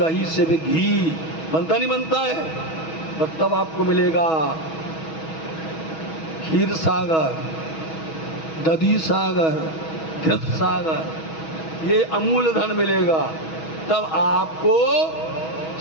से भी घी बनता नहीं बनता है? और तब आपको मिलेगा क्षीर सागर, दधी सागर, घृत सागर, ये अमूल धन मिलेगा। तब आपको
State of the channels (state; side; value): late; right; 6.2 ms